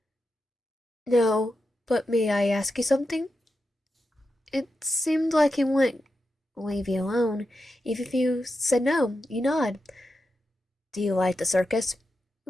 No, but may I ask you something? It seemed like he wouldn't leave you alone. Even if you said no, you nod. Do you like the circus?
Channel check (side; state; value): both; normal; correlation 0.89